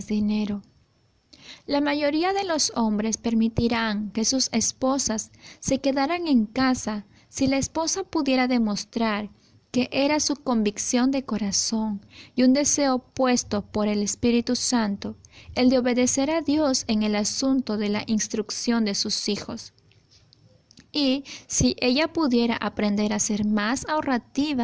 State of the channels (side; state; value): both; identical; correlation 1.00